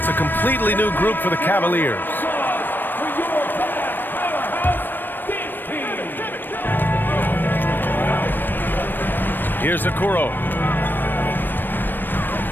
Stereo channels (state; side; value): late; right; 0.093 ms